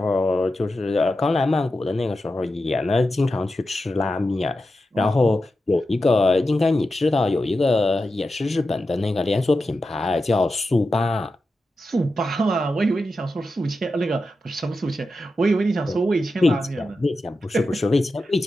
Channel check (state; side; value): normal; both; correlation 0.90